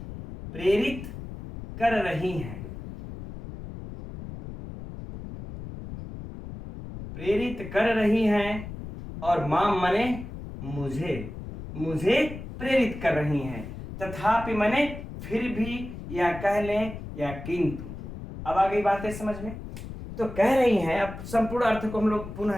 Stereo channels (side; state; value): left; noise; rumble, 10 dB below the sound